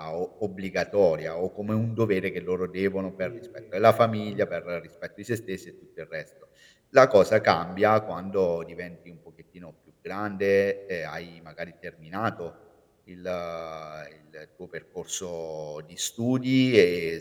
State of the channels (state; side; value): identical; both; correlation 1.00